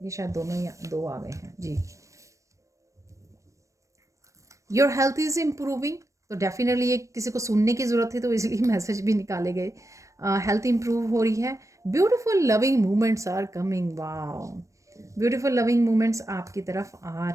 शायद दोनों ही 2 आ गए हैं जी। योर हेल्थ इज़ इम्प्रूविंग, तो डेफिनेटली ये किसी को सुनने की ज़रूरत थी तो इसलिए मैसेज भी निकाले गए। हेल्थ इम्प्रूव हो रही है। Beautiful loving moments are coming, wow. Beautiful loving moments आपकी तरफ आ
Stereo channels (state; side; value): late; left; 0.15 ms